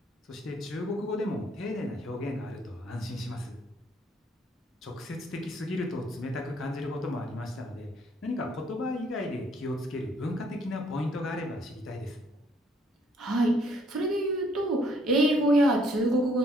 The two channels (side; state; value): both; normal; correlation 0.65